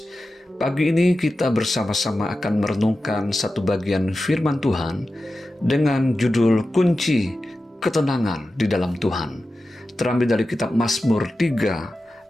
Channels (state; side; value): normal; both; correlation 0.93